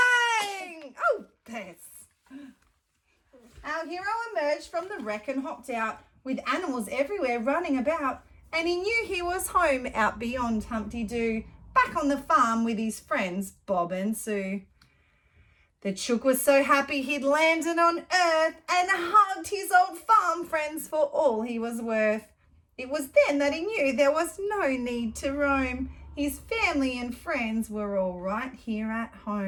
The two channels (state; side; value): identical; both; correlation 1.00